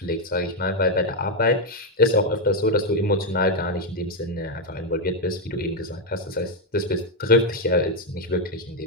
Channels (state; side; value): normal; both; correlation 0.04